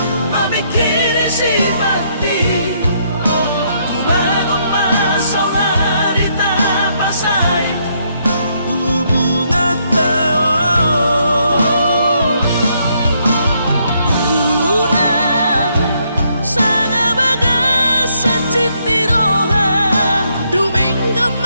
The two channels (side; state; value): both; inverted; correlation -0.73